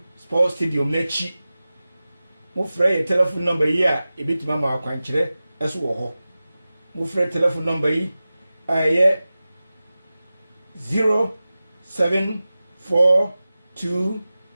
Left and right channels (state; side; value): inverted; both; correlation -0.96